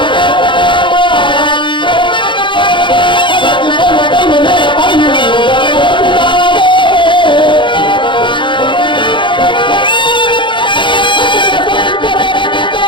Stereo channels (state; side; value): late; right; 0.23 ms